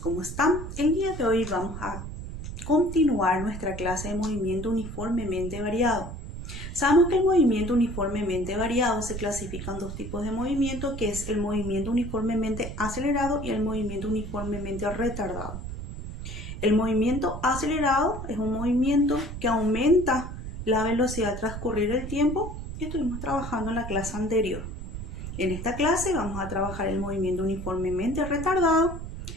están? El día de hoy vamos a continuar nuestra clase de movimiento uniformemente variado. Sabemos que el movimiento uniformemente variado se clasifica en dos tipos de movimiento, que es el movimiento uniformemente acelerado y el movimiento uniformemente retardado. El movimiento acelerado es un movimiento que aumenta la velocidad al transcurrir el tiempo que estuvimos trabajando en la clase anterior. En esta clase vamos a trabajar el movimiento uniformemente retardado,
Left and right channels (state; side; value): noise; right; rumble, 8 dB below the sound